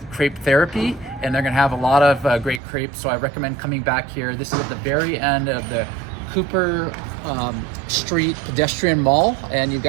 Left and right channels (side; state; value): left; drops out; at 2.6 s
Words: Crepe Therapy, and they're going to have a lot of great crepes. So I recommend coming back here. This is at the very end of the Cooper Street pedestrian mall, and you've